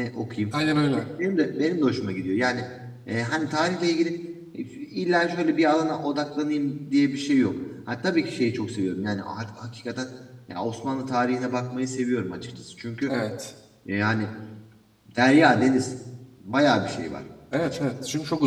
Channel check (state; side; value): identical; both; correlation 1.00